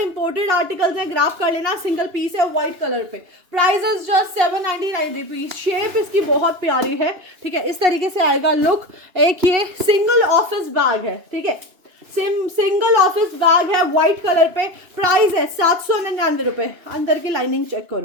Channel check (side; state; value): left; late; 2.9 ms